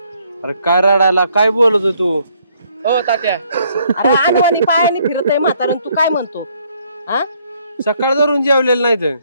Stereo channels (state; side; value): inverted; both; correlation -0.67